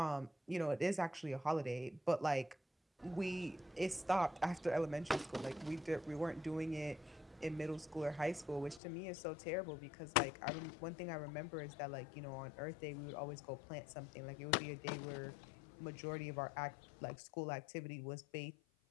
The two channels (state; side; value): drops out; right; at 8.8 s